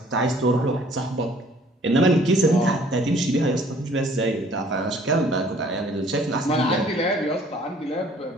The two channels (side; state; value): both; normal; correlation 0.57